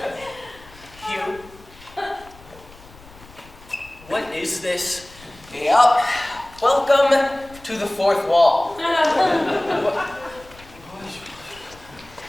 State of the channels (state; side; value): noise; left; rumble, 22 dB below the sound